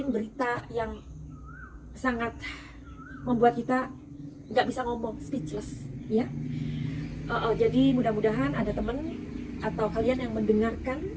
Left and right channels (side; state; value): both; identical; correlation 1.00